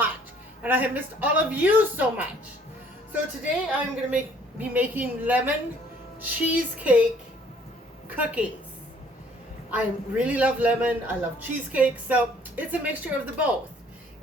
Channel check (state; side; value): normal; both; correlation 0.59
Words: and I have missed all of you so much. So today I'm going to be making lemon cheesecake cookies. I really love lemon. I love cheesecake, so it's a mixture of the both.